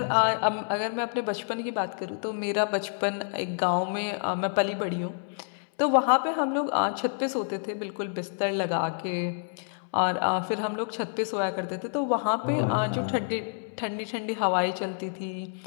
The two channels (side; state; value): right; silent; digital silence